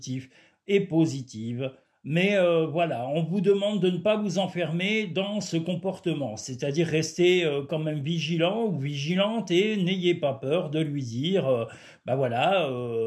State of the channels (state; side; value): identical; both; correlation 1.00